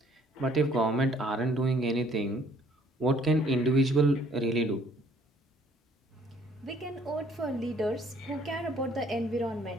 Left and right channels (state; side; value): normal; both; correlation 0.61